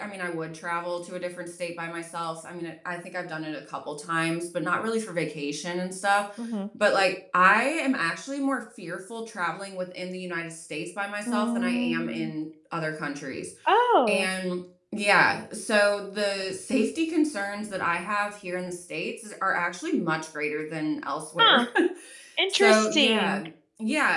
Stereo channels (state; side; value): identical; both; correlation 1.00